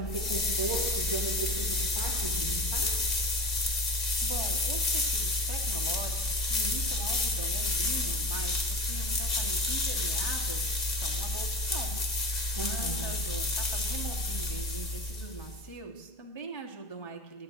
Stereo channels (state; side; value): late; right; 2.0 ms